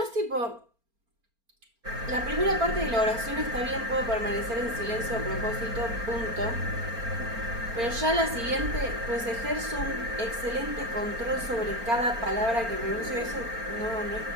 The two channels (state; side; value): late; left; 4.4 ms